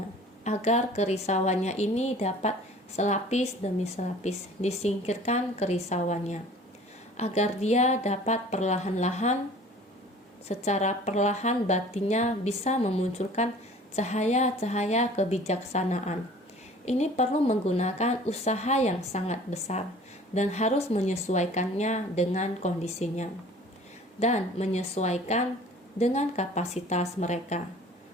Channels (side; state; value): both; normal; correlation 0.47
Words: agar kerisauannya ini dapat selapis demi selapis disingkirkan kerisauannya, agar dia dapat perlahan-lahan, secara perlahan batinnya bisa memunculkan cahaya-cahaya kebijaksanaan. Ini perlu menggunakan usaha yang sangat besar dan harus menyesuaikannya dengan kondisinya dan menyesuaikan dengan kapasitas mereka.